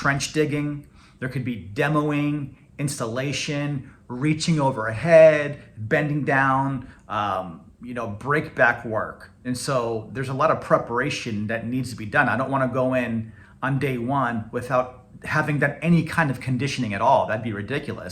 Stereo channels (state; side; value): identical; both; correlation 1.00